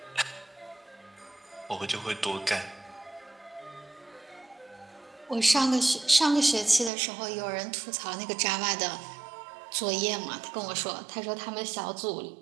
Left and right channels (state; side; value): drops out; left; at 6.9 s